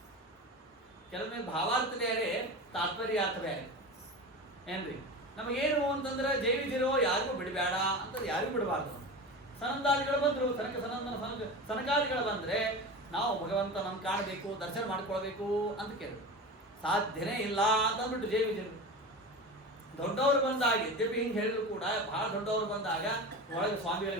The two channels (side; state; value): both; normal; correlation 0.29